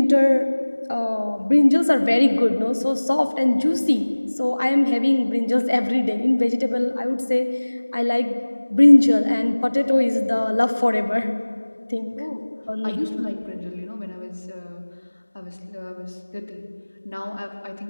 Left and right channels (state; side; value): inverted; both; correlation -1.00